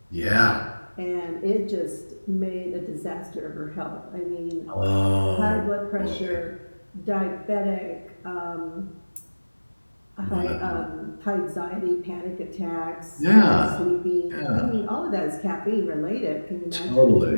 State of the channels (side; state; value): both; inverted; correlation -1.00